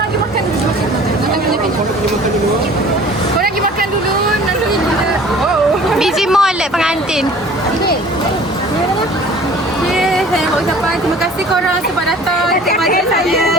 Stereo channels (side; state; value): both; normal; correlation 0.47